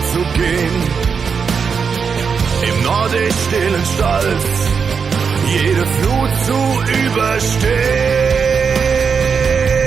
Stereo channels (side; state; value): left; quieter; 6.0 dB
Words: zu gehen. Im nordisch stillen Stolz jede Flut zu überstehen.